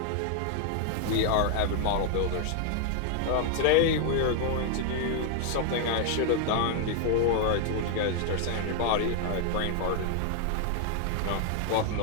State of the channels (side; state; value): both; different; correlation 0.00